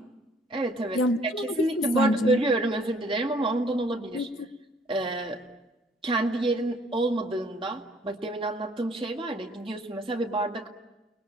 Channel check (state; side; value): normal; both; correlation 0.60